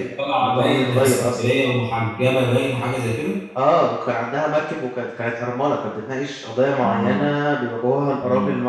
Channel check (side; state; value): both; identical; correlation 1.00